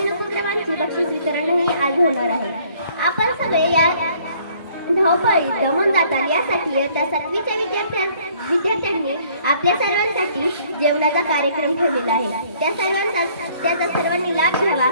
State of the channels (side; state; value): both; inverted; correlation -0.60